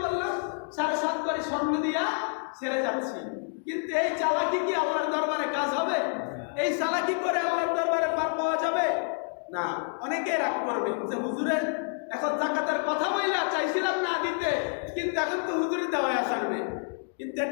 বললাম 7.5 ভরি স্বর্ণ দিয়া সেরে যাচ্ছি। কিন্তু এই চালাকি কি আল্লাহর দরবারে কাজ হবে? এই চালাকি করে আল্লাহর দরবারে পার পাওয়া যাবে না। অনেকে রাগ করবে যে হুজুরের এখন যাকাতের কথা বইলা চাইছিলাম না দিতে, কিন্তু এখন তো হুজুরে দেওয়ায় আসবে। কিন্তু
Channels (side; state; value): right; silent; 59 dB below the other